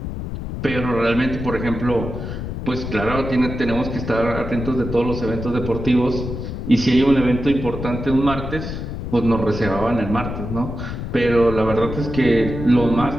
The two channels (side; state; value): left; noise; rumble, 6 dB below the sound